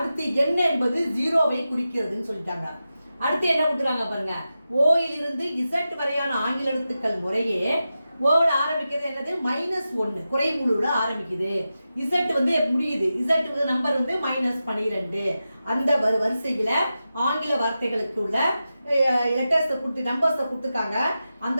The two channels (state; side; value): inverted; both; correlation -0.92